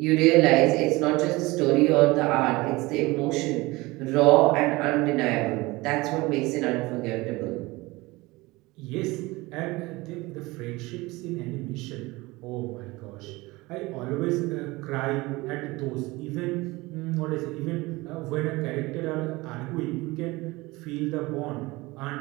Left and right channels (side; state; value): left; quieter; 21.7 dB